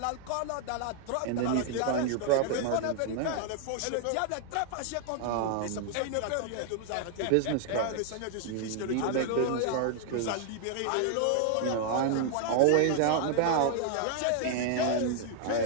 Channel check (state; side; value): different; both; correlation 0.00